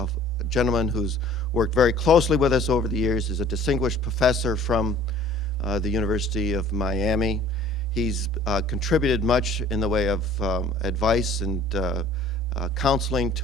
gentleman who's worked very closely with us over the years, is a distinguished professor from the University of Miami. He's contributed much in the way of advice and counseling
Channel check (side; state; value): both; normal; correlation 0.50